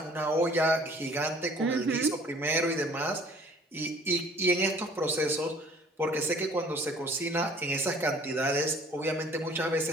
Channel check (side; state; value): both; normal; correlation 0.53